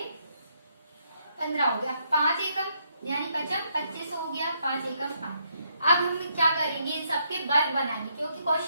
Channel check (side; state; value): both; inverted; correlation -0.75